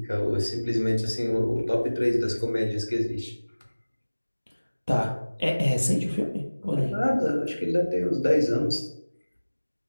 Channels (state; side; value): inverted; both; correlation -1.00